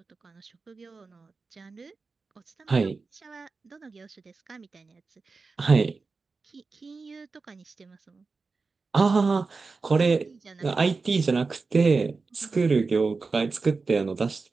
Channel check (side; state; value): left; quieter; 4.2 dB